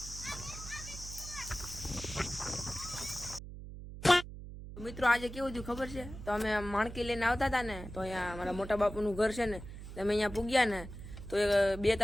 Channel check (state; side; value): noise; right; hum, 12 dB below the sound